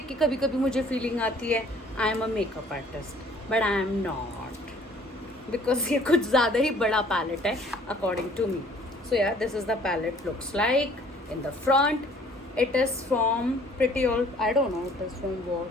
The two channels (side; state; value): both; normal; correlation 0.56